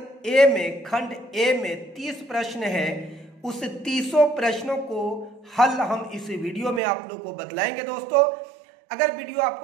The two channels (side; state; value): left; drops out; at 6.8 s